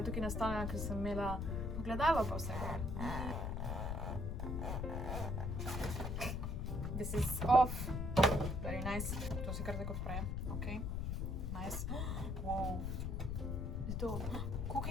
tukaj nastavljena, ker sem imela pogledalo pa vsega. This is off. Very nice. To se kar tako odpre. Ok. Nice. Wow. To. Koliko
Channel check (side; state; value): left; noise; rumble, 1 dB below the sound